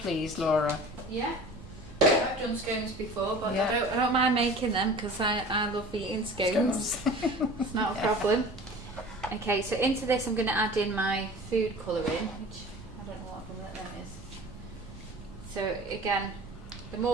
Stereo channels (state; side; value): noise; right; rumble, 17 dB below the sound